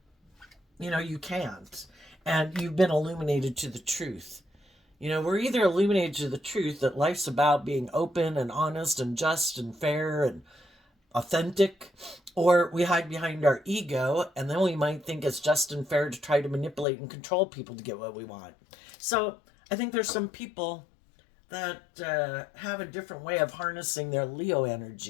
you can't. And you've been illuminated to the truth. We're either illuminated to the truth that life's about being open and honest and just and fair and authentic, or we hide behind our ego, and then we might think it's just and fair to try to manipulate and control people to get what we want. So I think there's some people that have a different way of harnessing their Leo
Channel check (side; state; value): right; drops out; at 16.9 s